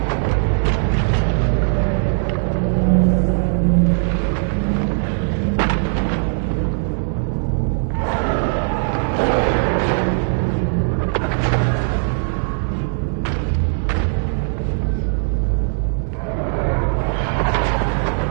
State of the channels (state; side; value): silent; left; digital silence